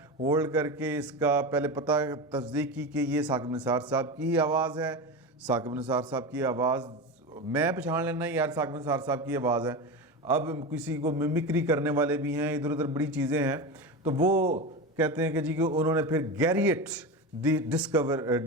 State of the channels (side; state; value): both; normal; correlation 0.22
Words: ہولڈ کر کے اس کا پہلے پتہ تصدیق کی کہ یہ ثاقب نثار صاحب کی ہی آواز ہے. ثاقب نثار صاحب کی آواز میں پہچان لینا یار ثاقب نثار صاحب کی آواز ہے. اب کسی کو ممکری کرنے والے بھی ہیں, ادھر ادھر بڑی چیزیں ہیں. تو وہ کہتے ہیں کہ جی کہ انہوں نے پھر گیریٹ